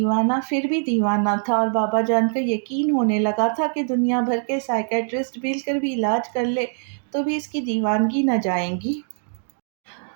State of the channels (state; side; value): silent; left; 60 dB below the other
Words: پھر بھی دیوانہ تھا۔ اور بابا جان کو یقین ہونے لگا تھا کہ دنیا بھر کے سائیکیٹرسٹ مل کر بھی علاج کر لے تو بھی اس کی دیوانگی نہ جائیں گی۔